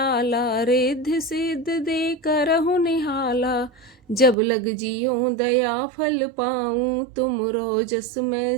रिद्धि सिद्ध दे करहु निहाला जब लग जियो दया फल पाऊं तुम रोजस में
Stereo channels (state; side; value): drops out; left; at 4.4 s